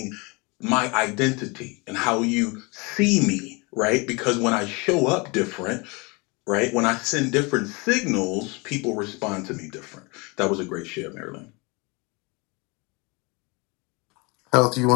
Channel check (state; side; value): quieter; right; 27.9 dB